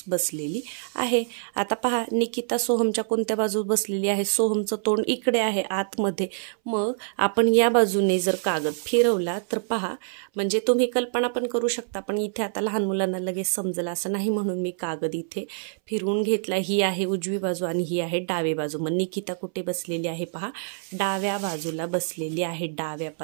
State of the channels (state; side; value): silent; left; 61 dB below the other